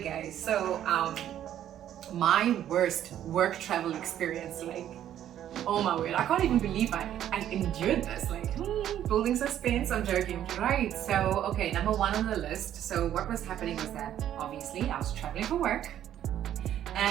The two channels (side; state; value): left; quieter; 11.1 dB